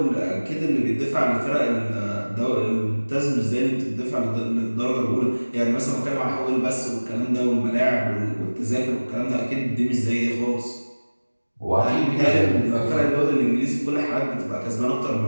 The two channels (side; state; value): both; inverted; correlation -1.00